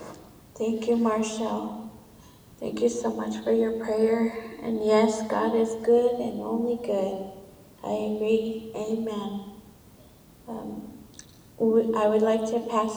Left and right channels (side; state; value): both; identical; correlation 1.00